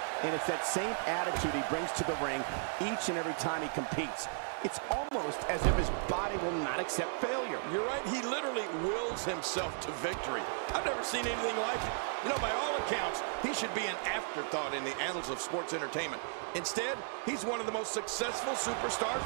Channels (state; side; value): silent; left; digital silence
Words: And it's that same attitude he brings to the ring each and every time he competes. It's almost as if his body will not accept failure. You're right, he literally wills himself to victory. I've never seen anything like it. You know, by all accounts, he should be an afterthought in the annals of sports entertainment. Instead, he's one of the most successful superstars